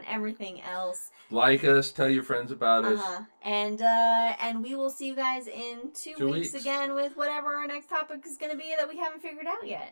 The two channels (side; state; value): both; inverted; correlation -1.00